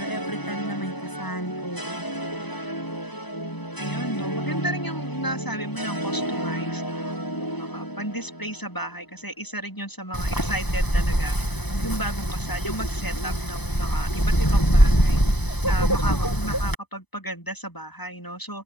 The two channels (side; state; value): right; late; 0.99 ms